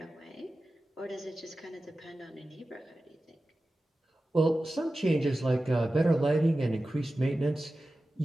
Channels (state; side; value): normal; both; correlation 0.95